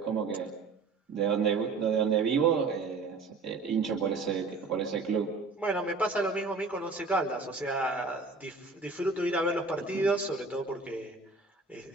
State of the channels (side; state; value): left; quieter; 4.0 dB